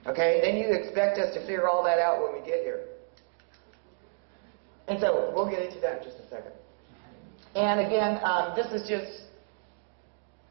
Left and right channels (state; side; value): silent; left; digital silence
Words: Okay? Then you expect us to figure all that out when we get here. And so we'll get into that in just a second. And again, this is just